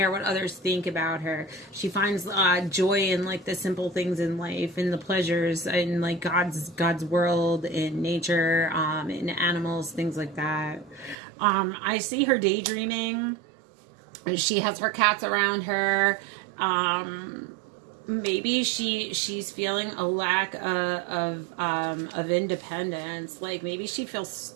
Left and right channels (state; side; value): drops out; left; at 11.2 s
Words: what others think about her. She finds joy in like the simple things in life and the pleasures in like God's world, in nature, in animals, things like that. I see her daydreaming. She has her cats around her. Maybe she's feeling a lack of independence. Like maybe she feels